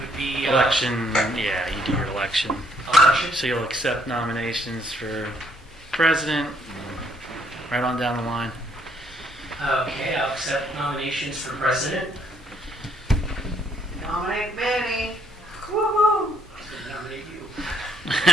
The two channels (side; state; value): both; normal; correlation 0.69